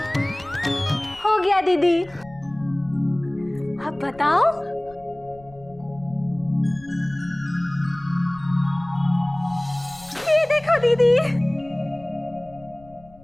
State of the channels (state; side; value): noise; left; rumble, 24 dB below the sound